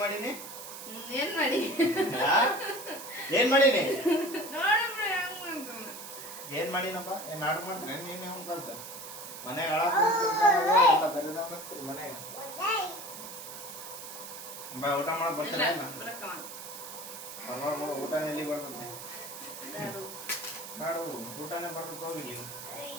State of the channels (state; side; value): noise; right; hiss, 11 dB below the sound